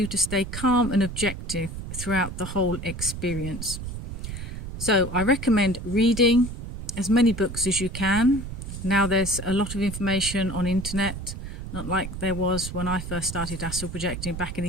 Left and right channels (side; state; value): right; noise; rumble, 8 dB below the sound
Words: to stay calm and objective throughout the whole experience. So I recommend reading as many books as you can. Now there's a lot of information on internet, not like there was when I first started astral projecting back in